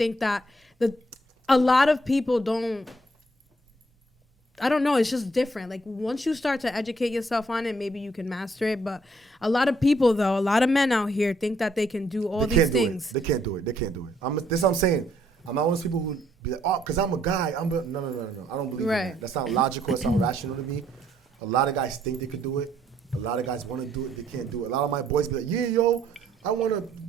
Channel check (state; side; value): normal; both; correlation 0.68